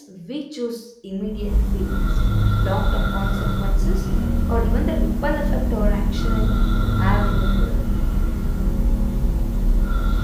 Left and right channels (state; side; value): identical; both; correlation 1.00